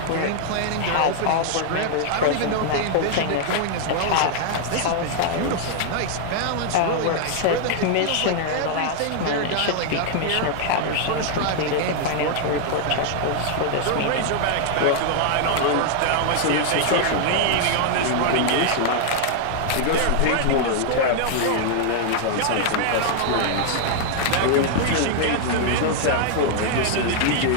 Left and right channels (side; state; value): both; different; correlation -0.01